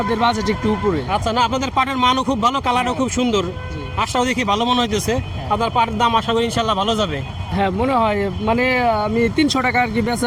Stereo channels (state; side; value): identical; both; correlation 1.00